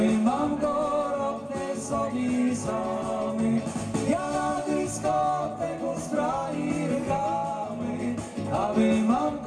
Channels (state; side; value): identical; both; correlation 1.00